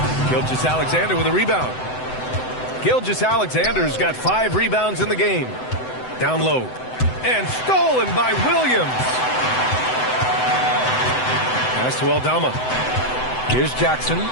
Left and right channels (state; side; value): late; right; 7.9 ms